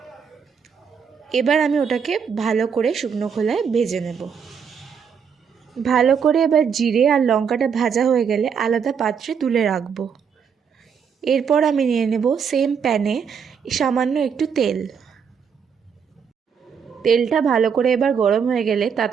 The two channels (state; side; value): quieter; left; 6.8 dB